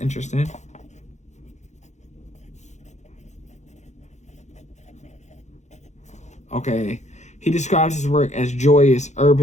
Okay, he describes his work as joyous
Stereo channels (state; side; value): late; right; 0.34 ms